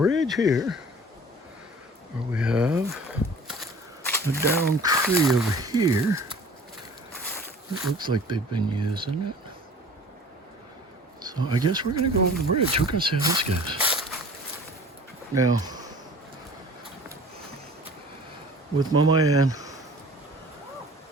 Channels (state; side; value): normal; both; correlation 0.46